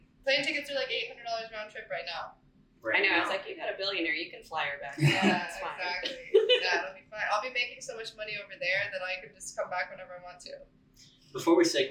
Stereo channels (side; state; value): both; identical; correlation 1.00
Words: Plane tickets are like $800 round trip right now. Right I know, now. I was like, you got a billionaire, you can fly her back. Yeah, It's fine. exactly. Yeah, it'll be fine. I'll be making so much money over there that I can just come back whenever I want to. Before we